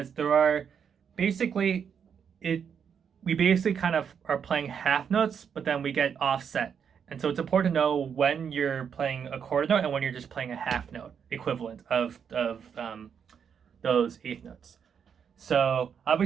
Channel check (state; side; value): quieter; left; 7.3 dB